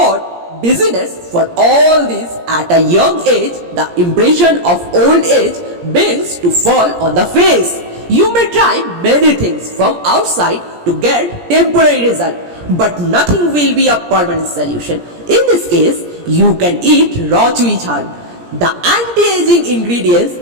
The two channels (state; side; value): late; left; 17 ms